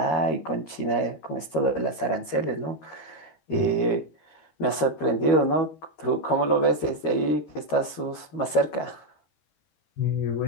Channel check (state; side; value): late; right; 13 ms